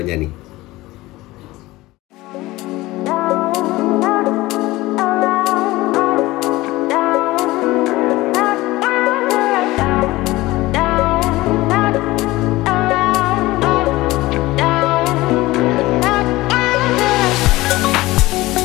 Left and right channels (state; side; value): quieter; right; 19.0 dB